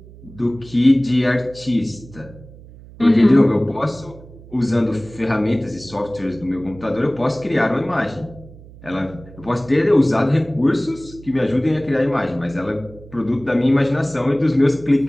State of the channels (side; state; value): right; noise; hum, 20 dB below the sound